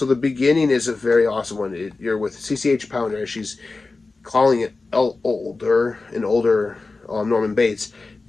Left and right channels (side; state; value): right; quieter; 3.7 dB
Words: the beginning is a very awesome one. You're with CCH Pounder. She's calling it an older Norman Bates,